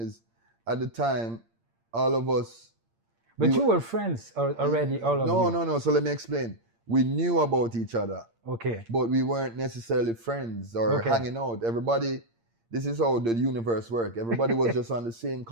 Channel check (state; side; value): late; left; 8.7 ms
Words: at the time, all of us... But you were friends already, all of you? No, so let me explain. We knew about each other. Okay. But we weren't necessarily friends or hanging out. Everybody, this is how the universe works. Everybody was just on the same